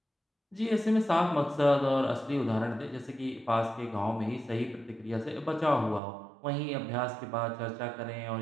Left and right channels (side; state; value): left; drops out; at 6.0 s